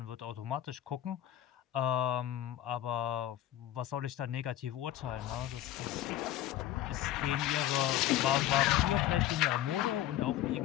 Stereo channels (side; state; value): right; quieter; 12.8 dB